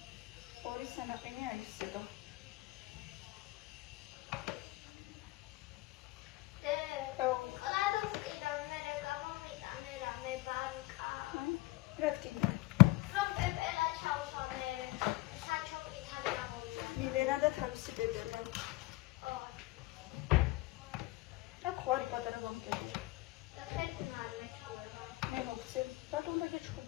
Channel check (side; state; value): right; quieter; 20.2 dB